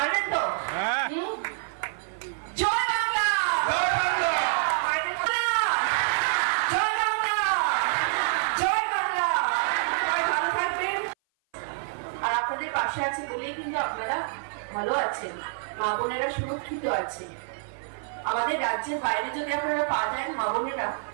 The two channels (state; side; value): silent; left; 56 dB below the other